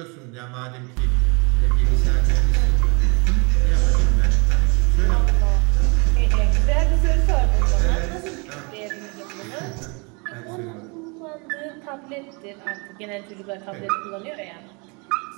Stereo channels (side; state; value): left; quieter; 30.9 dB